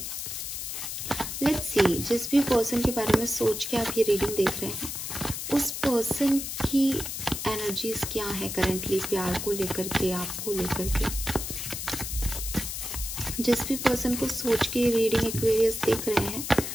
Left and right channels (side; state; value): left; noise; hiss, 5 dB below the sound